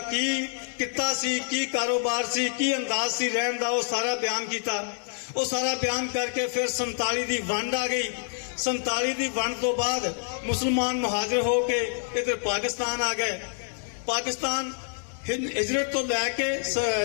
ਕਿੱਤਾ ਸੀ, ਕੀ ਕਾਰੋਬਾਰ ਸੀ, ਕੀ ਅੰਦਾਜ਼ ਸੀ ਰਹਿਣ ਦਾ, ਉਹ ਸਾਰਾ ਬਿਆਨ ਕੀਤਾ। ਉਹ ਸਾਰਾ ਬਿਆਨ ਕਰਕੇ ਫਿਰ 47 ਦੀ ਵੰਡ ਆ ਗਈ। 47 ਦੀ ਵੰਡ ਤੋਂ ਬਾਅਦ ਮੁਸਲਮਾਨ ਮੁਹਾਜਰ ਹੋ ਕੇ ਇੱਧਰ ਪਾਕਿਸਤਾਨ ਆ ਗਏ। ਪਾਕਿਸਤਾਨ ਹਿਜਰਤ ਤੋਂ ਲੈ ਕੇ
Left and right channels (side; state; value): right; silent; digital silence